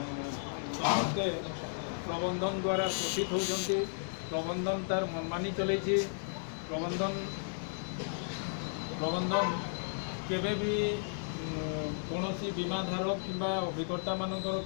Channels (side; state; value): right; silent; digital silence